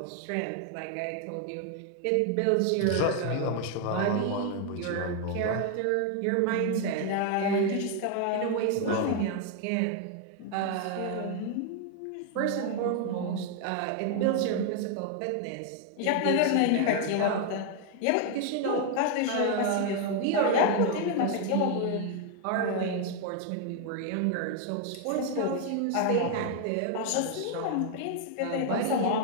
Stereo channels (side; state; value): both; different; correlation 0.00